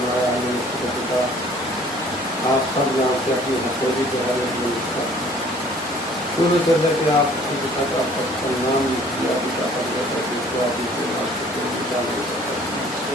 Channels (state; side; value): normal; both; correlation 0.54